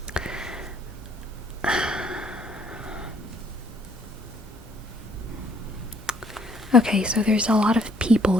Okay, so there's a lot of people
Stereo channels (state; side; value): normal; both; correlation 0.64